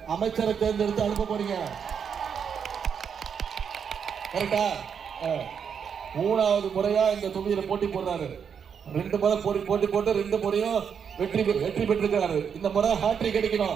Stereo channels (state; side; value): quieter; left; 7.1 dB